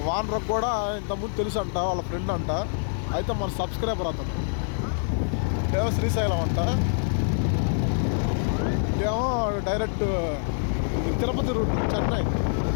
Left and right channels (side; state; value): right; silent; 61 dB below the other